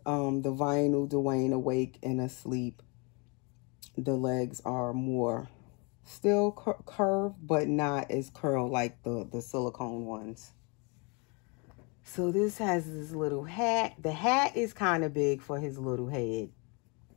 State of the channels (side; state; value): right; quieter; 31.6 dB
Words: The vinyl Dwayne awake and asleep, the legs are more still curved, but not as curled like the silicone ones. So this has this little hat. The hat is kind of big for his little head,